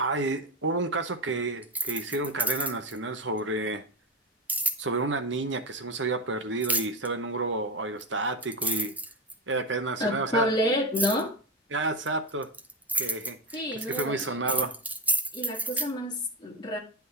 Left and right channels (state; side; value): normal; both; correlation 0.20